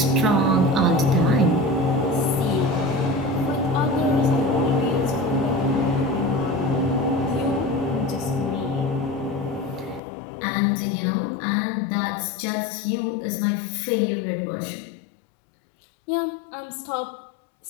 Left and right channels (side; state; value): right; drops out; at 10.0 s